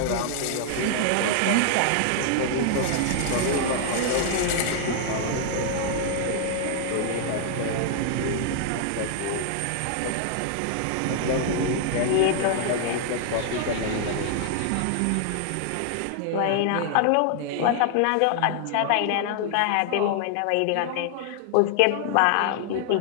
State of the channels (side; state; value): both; different; correlation 0.00